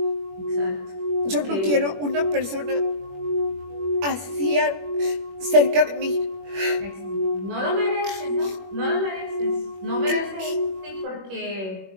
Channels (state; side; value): late; left; 21 ms